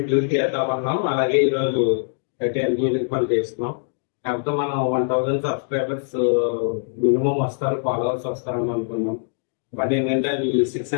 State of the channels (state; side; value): silent; right; digital silence